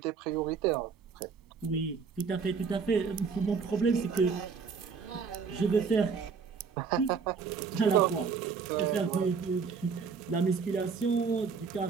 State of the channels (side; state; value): left; quieter; 5.6 dB